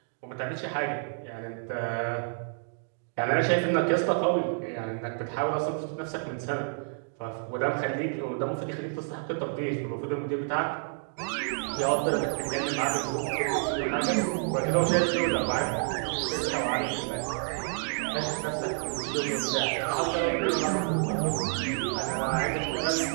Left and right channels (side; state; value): left; silent; 58 dB below the other